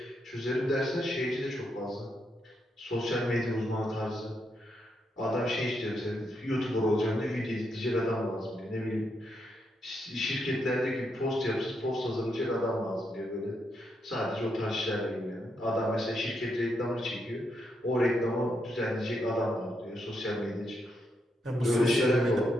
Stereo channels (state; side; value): normal; both; correlation 0.80